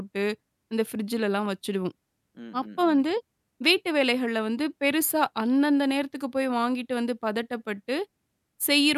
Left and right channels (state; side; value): identical; both; correlation 1.00